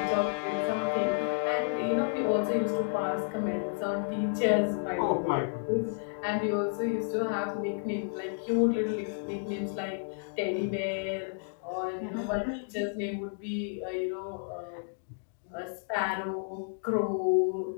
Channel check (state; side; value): silent; right; digital silence